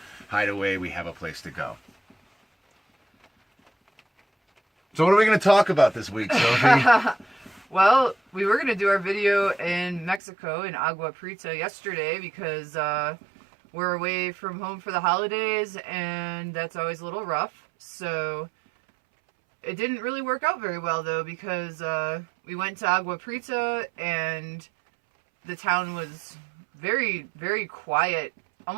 hide away, we have a place to go. So what are we going to talk about this week, Sophie? Well, we were going to do our video in Mexico, in Agua Prieta, yesterday because we're away from home for the holidays, and that's always a little rough. So it didn't really work out very well, though, because we went to Agua Prieta, and the town was very, very quiet,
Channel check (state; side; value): drops out; left; at 10.2 s